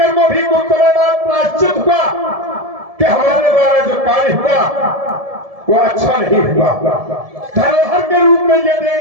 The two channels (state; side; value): late; left; 1.7 ms